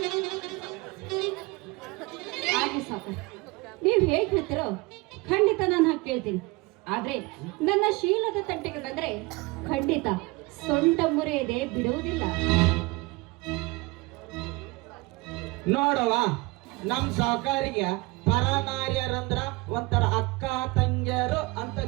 ಹಾಗೆ ಸಾಕು, ನೀವು ಹೇಗೆ ಹೇಳ್ತಿರೋ ನಾನು ಹಾಗೆ ಕೇಳ್ತೀನಿ. ಆದ್ರೆ ನನ್ನ ಶೀಲದ ತಟ್ಟಿಗೆ ಬಂದ್ರೆ ಖಂಡಿತ ಸೊಂಟ ಮುರಿಯದೆ ಬಿಡುವುದಿಲ್ಲ. ನೋಡವ, ನಮ್ ಸಾವುಕಾರಿಗೆ ಪರನಾರ್ಯರಂದ್ರ ಒಂಥರ ಅಕ್ಕ ತಂಗಿಯರು ಅಂತ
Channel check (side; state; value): left; quieter; 24.3 dB